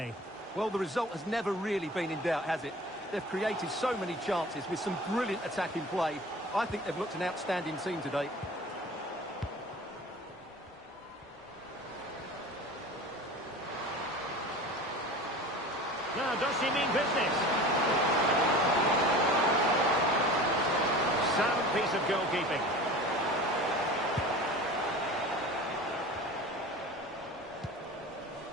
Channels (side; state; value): both; normal; correlation 0.38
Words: Well, the result has never really been in doubt, has it? They've created so many chances with some brilliant attacking play. I think they've looked an outstanding team today. Now, does she mean business? Sound piece of goalkeeping.